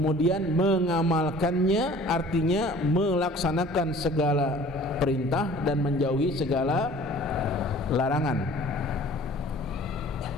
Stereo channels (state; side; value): normal; both; correlation 0.49